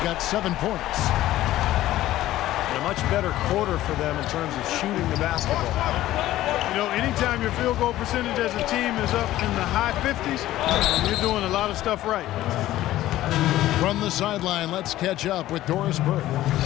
got 7 points. And a much better quarter for them in terms of shooting the basketball. You know, anytime your field goal percentage as a team is up in the high 50s, you're doing a lot of stuff right. From the sideline, let's catch up with Doris Burke.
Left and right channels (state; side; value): quieter; right; 14.8 dB